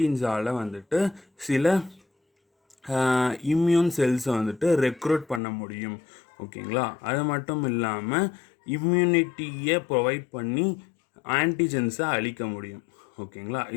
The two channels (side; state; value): right; drops out; at 5.4 s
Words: வந்துட்டு சில இம்யூன் செல்ஸை வந்துட்டு ரெக்ரூட் பண்ண முடியும். ஓகேங்களா? அது மட்டும் இல்லாமல் இம்யூனிட்டியை ப்ரொவைட் பண்ணி ஆன்டிஜென்ஸை அழிக்க முடியும். ஓகேங்களா?